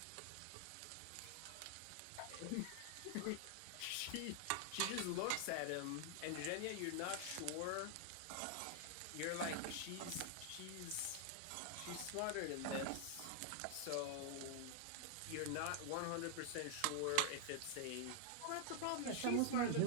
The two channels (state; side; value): different; both; correlation 0.00